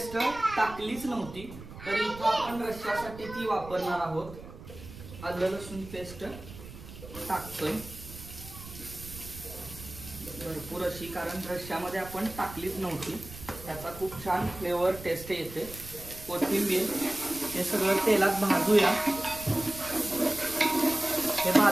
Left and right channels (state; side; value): noise; right; rumble, 15 dB below the sound